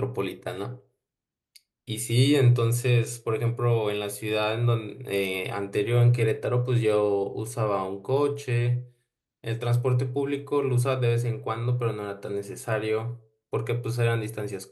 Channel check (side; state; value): both; identical; correlation 1.00